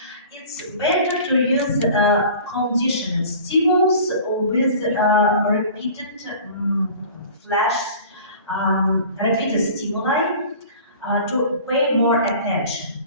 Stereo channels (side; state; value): both; inverted; correlation -0.42